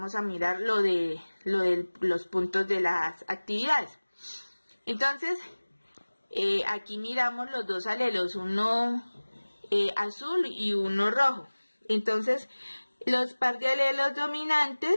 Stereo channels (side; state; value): both; inverted; correlation -1.00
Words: a mirar lo de los puntos de las actividades. Entonces, aquí miramos los dos alelos, uno azul y uno rojo. Entonces, los par de alelos